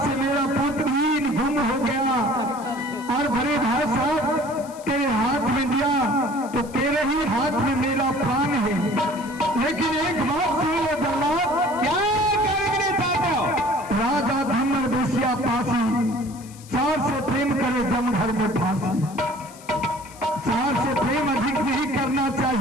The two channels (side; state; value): left; noise; hiss, 21 dB below the sound